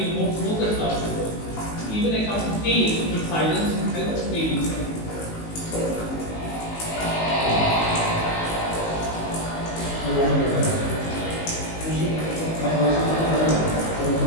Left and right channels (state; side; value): late; right; 19 ms